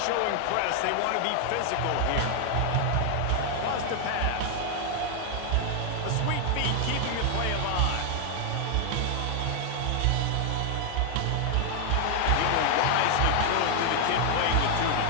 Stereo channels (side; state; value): both; different; correlation 0.00